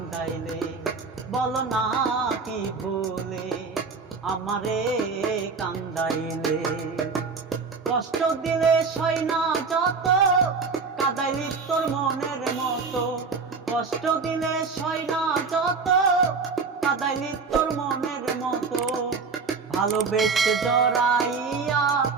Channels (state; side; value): quieter; left; 4.8 dB